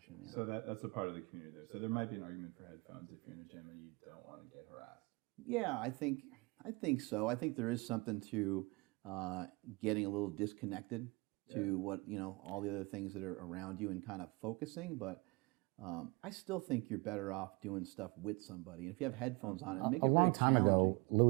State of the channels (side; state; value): left; quieter; 26.8 dB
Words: Yeah. So that's a part of the community there. So there might be an argument for headphones if you're in a gym and you don't want to get harassed. Yeah, I think so. I think there is something to getting a little disconnected to what, you know, all the other things that are around you and kind of focusing, but I still think you're better off doing stuff with somebody. And if you have headphones on, it make it very challenging. A long time ago,